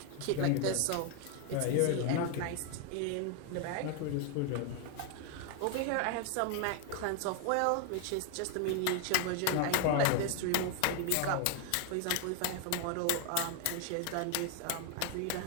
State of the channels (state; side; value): different; both; correlation 0.01